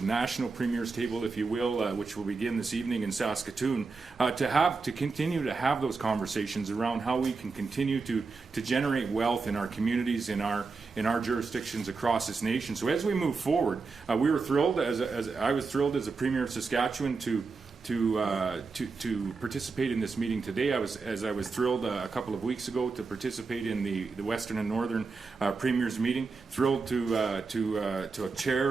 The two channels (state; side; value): quieter; left; 4.4 dB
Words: national premiers table, if you will, which will begin this evening in Saskatoon, to continue to have those conversations around how we can continue to generate wealth in our communities, in our jurisdictions across this nation. So as we move forward, we were thrilled, I was thrilled as a Premier of Saskatchewan to participate in this meeting today. I was thrilled a couple of weeks ago to participate in the Western and Northern Premiers meeting. Thrilled to